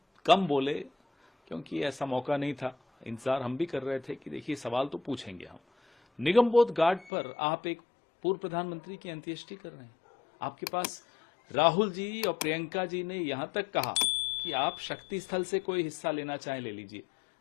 कम बोले क्योंकि ऐसा मौका नहीं था। इंतजार हम भी कर रहे थे कि देखिए सवाल तो पूछेंगे हम। निगमबोध घाट पर आप एक पूर्व प्रधानमंत्री की अंत्येष्टि कर रहे हैं। आपके पास राहुल जी और प्रियंका जी ने यहां तक कहा कि आप शक्ति स्थल से कोई हिस्सा लेना चाहें ले लीजिए,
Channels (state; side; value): drops out; right; at 7.1 s